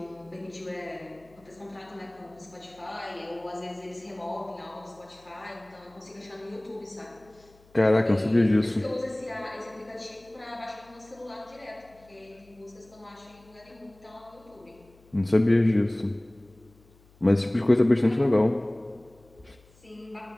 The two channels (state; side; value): noise; left; hum, 28 dB below the sound